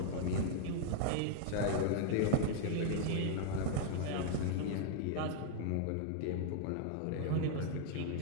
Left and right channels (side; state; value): both; different; correlation -0.01